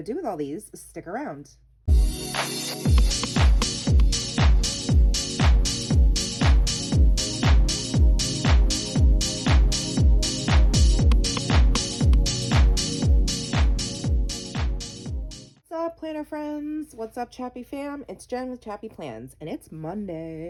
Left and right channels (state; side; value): identical; both; correlation 1.00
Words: to do with all these, stick around. What's up, planner friends? What's up, Chappy fam? It's Jen with ChappyPlans, and it's